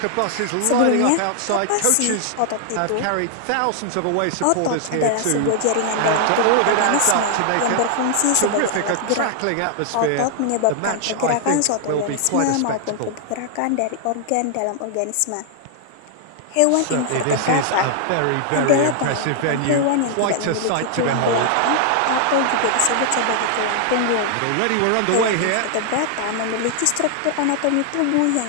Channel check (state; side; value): different; both; correlation 0.00